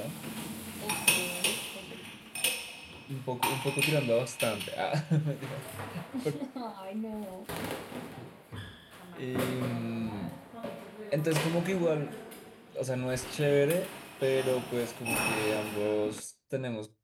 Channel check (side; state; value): both; identical; correlation 1.00